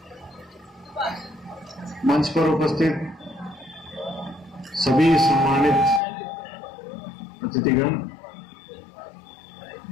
मंच पर उपस्थित सभी सम्मानित अतिथिगण,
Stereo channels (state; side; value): drops out; right; at 6.0 s